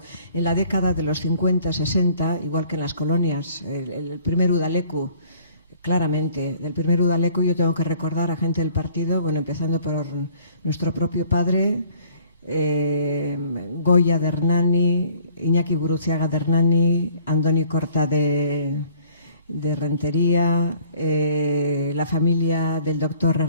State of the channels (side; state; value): both; inverted; correlation -0.57